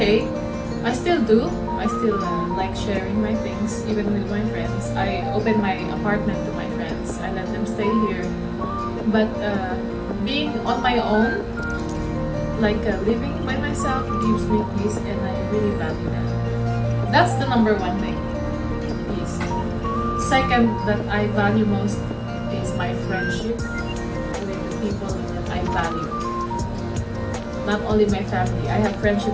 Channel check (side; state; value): both; identical; correlation 1.00